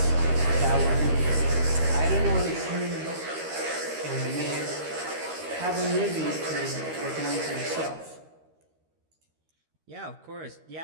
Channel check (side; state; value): left; late; 13 ms